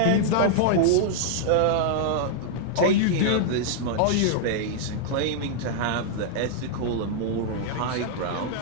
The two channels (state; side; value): different; both; correlation -0.01